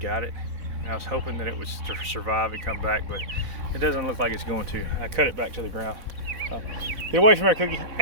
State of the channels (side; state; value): left; late; 4.0 ms